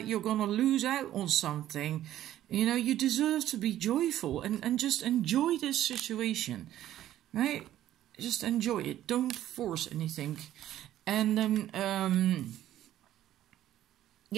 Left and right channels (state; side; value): quieter; left; 12.8 dB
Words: you're gonna lose out on something. You know, you deserve to be joyful and just enjoy this situation, right? Just enjoy it. Don't force anything, and then